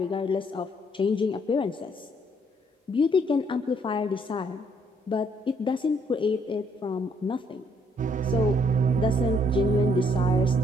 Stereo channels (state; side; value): normal; both; correlation 0.68